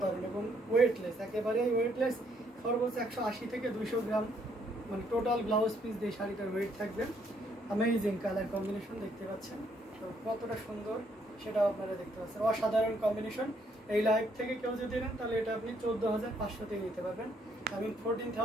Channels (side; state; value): both; normal; correlation 0.70